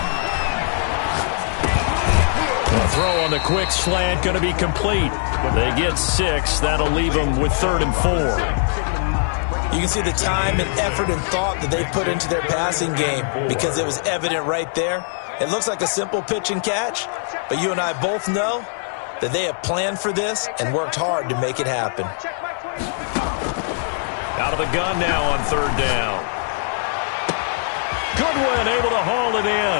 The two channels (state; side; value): silent; right; digital silence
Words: A throw on the quick slant going to be complete. They get 6. That'll leave them with 3rd and 4. You can see the time and effort and thought that they put into their passing game because it was evident right there. It looks like a simple pitch and catch, but you and I both know that they have planned for this and worked hard to make it happen. Out of the gun now on 3rd down. Goodwin able to haul it